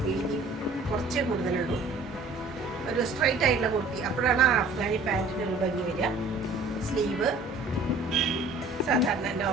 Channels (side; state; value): left; quieter; 3.4 dB